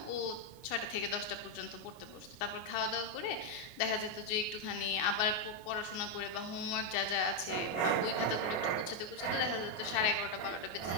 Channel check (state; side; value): late; right; 24 ms